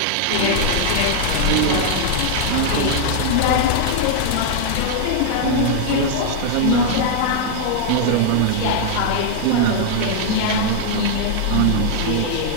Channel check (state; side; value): different; both; correlation 0.00